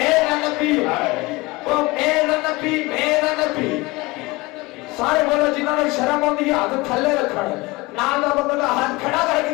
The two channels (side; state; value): right; quieter; 22.9 dB